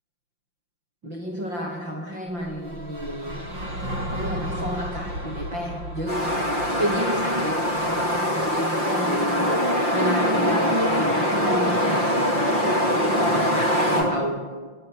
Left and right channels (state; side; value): late; left; 5.7 ms